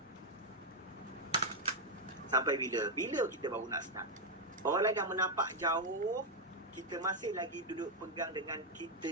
Sampai bila? Bila kita baru nak start? Orang lain dah menapak jauh, kita masih lagi duduk pegang dengan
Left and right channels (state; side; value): normal; both; correlation 0.01